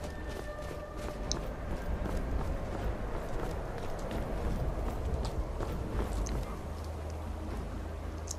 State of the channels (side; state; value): both; identical; correlation 1.00